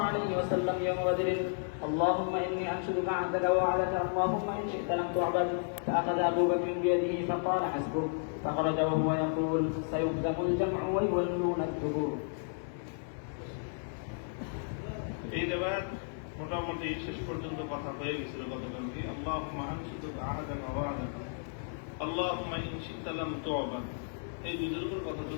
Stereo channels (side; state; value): right; silent; 56 dB below the other